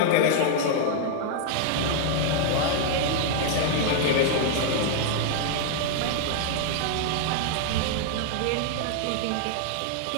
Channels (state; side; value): different; both; correlation 0.00